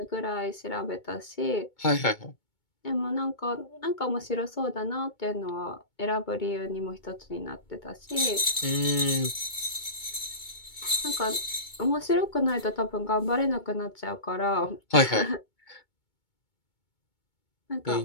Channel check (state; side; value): late; right; 2.2 ms